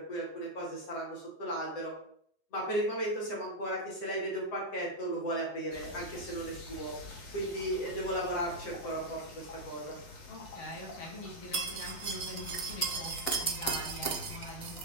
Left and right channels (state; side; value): late; right; 7.5 ms